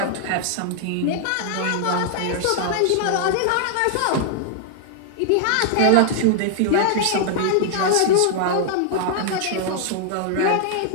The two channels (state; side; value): different; both; correlation -0.01